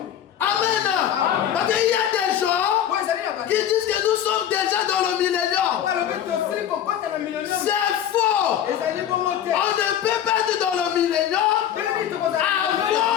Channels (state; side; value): quieter; right; 10.1 dB